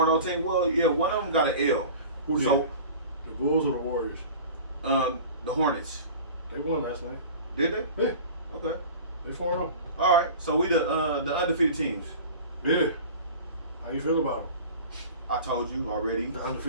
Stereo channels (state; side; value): inverted; both; correlation -0.39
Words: team. Well, yeah, one of them got an L. Who did? So, The Bulls or the Warriors? the Hornets. They won last night. Did they? Yeah. Okay. They 4-0. All right. So we the undefeated teams. Yeah. How you feel about them? I told you already. The